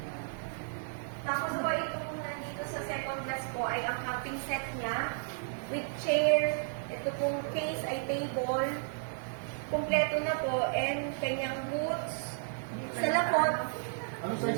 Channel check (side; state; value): left; silent; digital silence